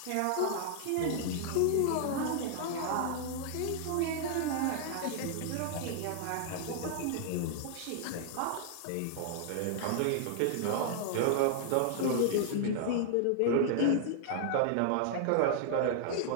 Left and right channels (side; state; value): both; different; correlation -0.01